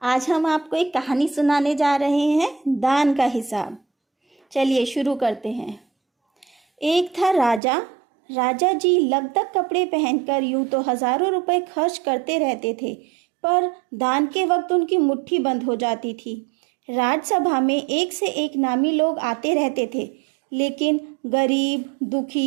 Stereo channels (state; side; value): drops out; left; at 7.6 s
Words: आज हम आपको एक कहानी सुनाने जा रहे हैं, दान का हिसाब। चलिए शुरू करते हैं। एक था राजा। राजा जी लगभग कपड़े पहनकर यूं तो हजारों रुपए खर्च करते रहते थे, पर दान के वक्त उनकी मुट्ठी बंद हो जाती थी। राजसभा में एक से एक नामी लोग आते रहते थे, लेकिन गरीब,